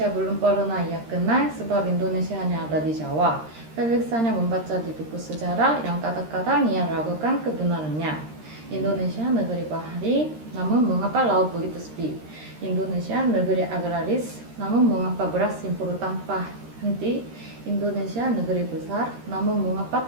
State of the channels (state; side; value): late; left; 13 ms